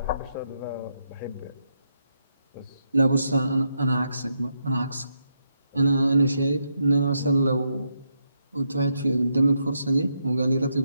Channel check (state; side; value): inverted; both; correlation -0.81